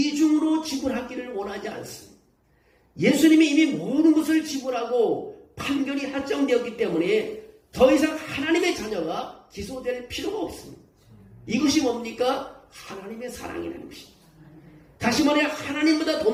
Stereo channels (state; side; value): identical; both; correlation 1.00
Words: 지불하기를 원하지 않습니다. 예수님이 이미 모든 것을 지불하고 판결이 확정되었기 때문에 더 이상 하나님의 자녀가 기소될 필요가 없습니다. 이것이 뭡니까? 하나님의 사랑이라는 것입니다. 다시 말해 하나님보다 더